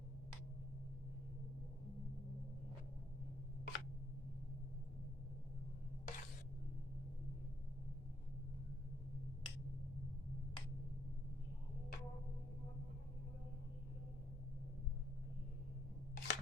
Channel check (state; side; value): normal; both; correlation 0.72